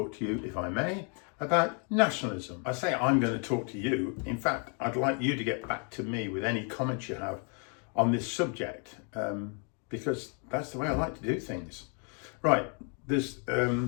to you, if I may, about nationalism. I say I'm going to talk to you. In fact, I'd like you to get back to me with any comments you have on this subject, because that's the way I like to do things. Right, there's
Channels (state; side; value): quieter; right; 39.4 dB